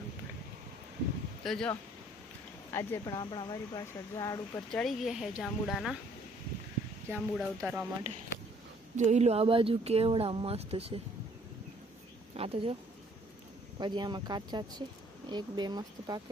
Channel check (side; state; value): both; normal; correlation 0.61